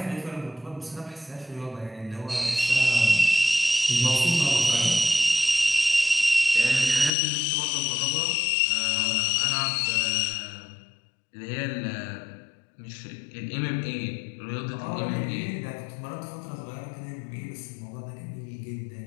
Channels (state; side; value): drops out; right; at 7.1 s